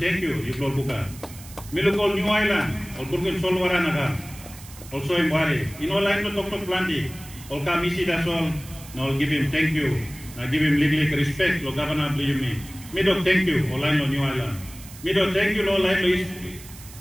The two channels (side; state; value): right; noise; hiss, 18 dB below the sound